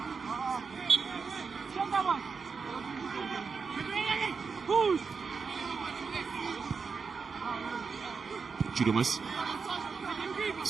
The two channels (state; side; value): quieter; left; 5.3 dB